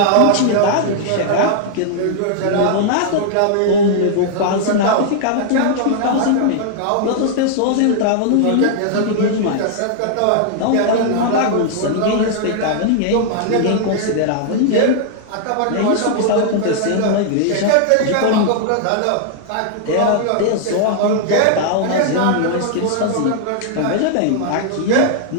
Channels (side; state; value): both; different; correlation -0.01